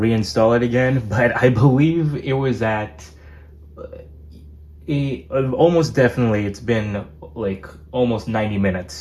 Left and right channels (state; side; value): identical; both; correlation 1.00